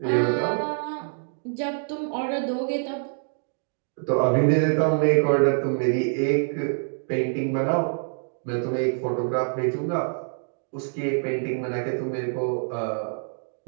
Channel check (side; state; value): left; silent; digital silence